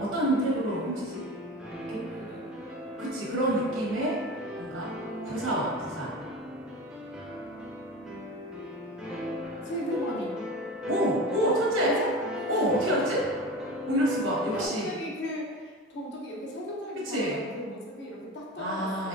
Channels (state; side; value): normal; both; correlation 0.31